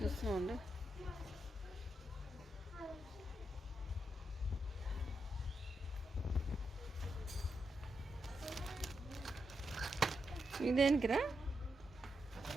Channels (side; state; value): both; normal; correlation 0.84